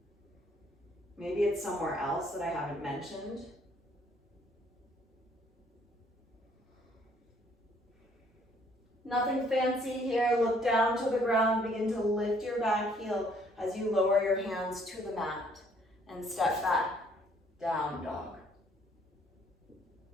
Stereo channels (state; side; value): normal; both; correlation 0.63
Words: Maybe it's somewhere else that I haven't mentioned. Nothing fancy here. Look down to the ground. Begin to lift your back heel as you lower your hands to the mat and step back, down dog.